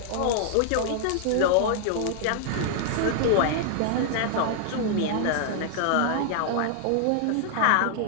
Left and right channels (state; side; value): different; both; correlation 0.00